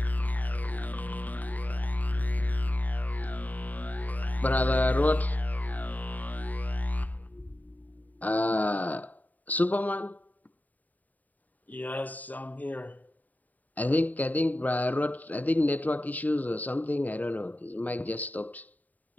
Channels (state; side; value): late; right; 0.078 ms